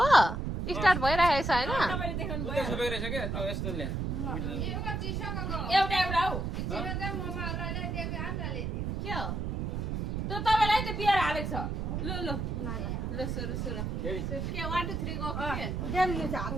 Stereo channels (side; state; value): right; noise; rumble, 2 dB below the sound